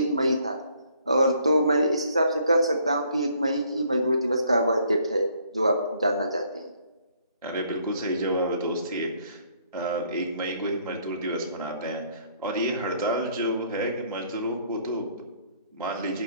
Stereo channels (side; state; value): both; inverted; correlation -0.64